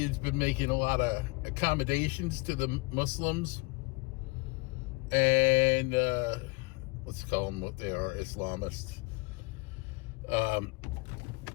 been making a lot of accommodations to the Muslims and let's call them what they are, Islamists.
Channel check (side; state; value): right; quieter; 26.7 dB